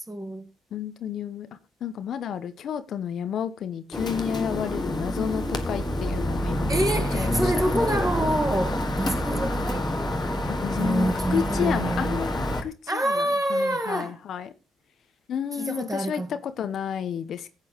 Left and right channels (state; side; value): normal; both; correlation 0.82